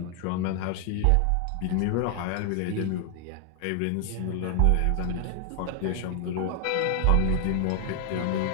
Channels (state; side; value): different; both; correlation 0.00